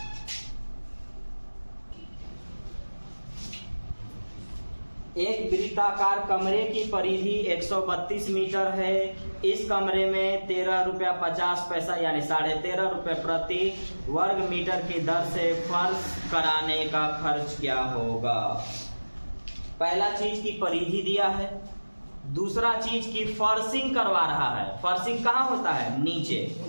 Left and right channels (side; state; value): both; inverted; correlation -1.00